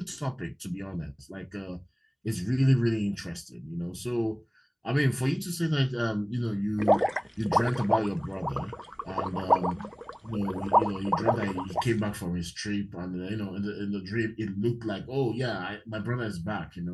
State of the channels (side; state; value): both; identical; correlation 1.00